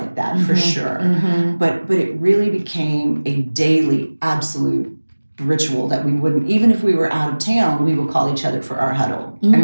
that for Mhm. sure, Mhm. but it really became a daily, absolute ritual that we wouldn't, even if we were out of town, we would call each other for our huddle and be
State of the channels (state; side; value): inverted; both; correlation -1.00